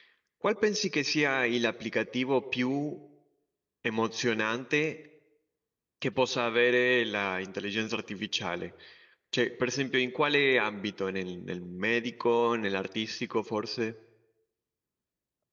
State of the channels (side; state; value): both; identical; correlation 1.00